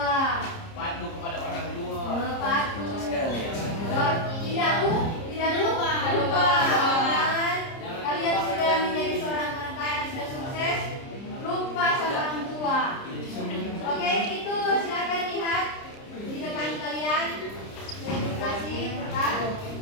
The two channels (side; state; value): right; late; 30 ms